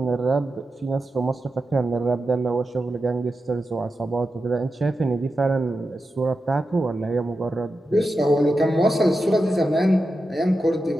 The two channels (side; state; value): both; normal; correlation 0.90